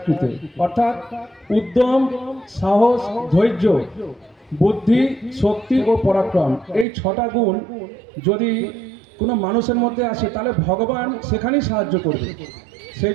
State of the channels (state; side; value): drops out; left; at 6.9 s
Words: অর্থাৎ উদ্যম, সাহস, ধৈর্য, বুদ্ধি, শক্তি ও পরাক্রম, এই 6টা গুণ যদি কোনো মানুষের মধ্যে আসে তাহলে ভগবান সেখানেই সাহায্য করবে। সেই